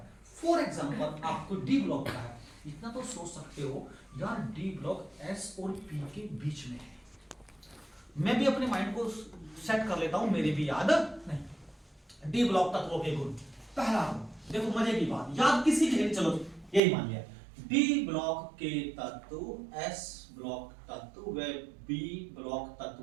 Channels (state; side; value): drops out; left; at 16.8 s